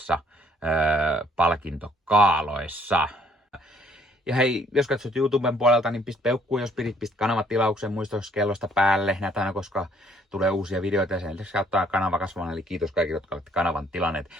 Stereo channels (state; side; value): normal; both; correlation 0.63